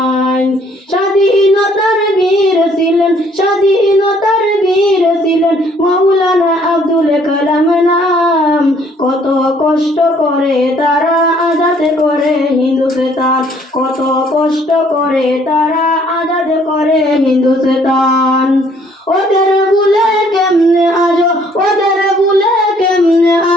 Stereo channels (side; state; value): both; normal; correlation 0.62